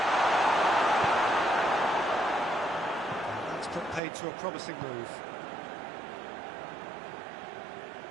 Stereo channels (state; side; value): drops out; left; at 4.0 s